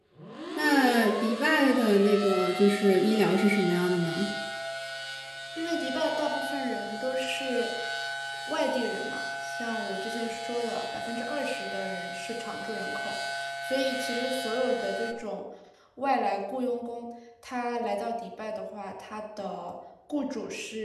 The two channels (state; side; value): identical; both; correlation 1.00